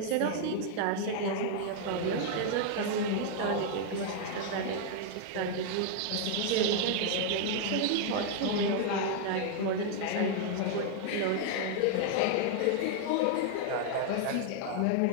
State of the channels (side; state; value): both; different; correlation 0.00